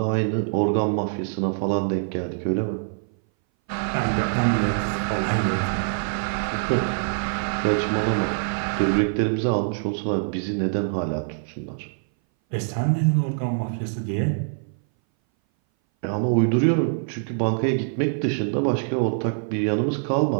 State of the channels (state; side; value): silent; left; 60 dB below the other